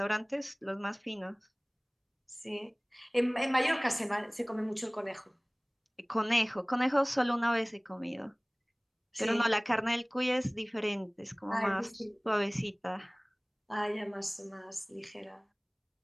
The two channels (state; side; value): identical; both; correlation 1.00